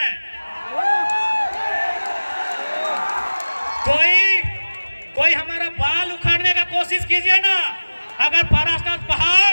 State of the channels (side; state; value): both; inverted; correlation -1.00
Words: कोई हमारा बाल उखाड़ने का कोशिश कीजिए ना, अगर पारास्तान